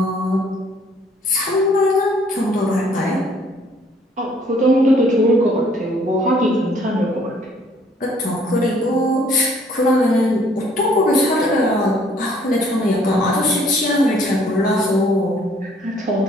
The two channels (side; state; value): both; normal; correlation 0.61